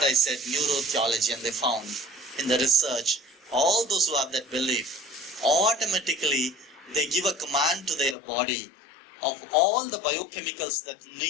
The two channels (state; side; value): drops out; right; at 8.2 s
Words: I said, neurotheology, and they found in the research, all those who have that belief, automatically they give a command to their body of all the biochemicals that